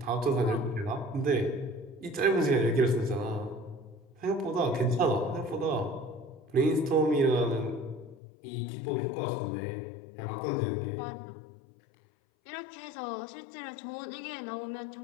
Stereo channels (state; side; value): drops out; right; at 8.2 s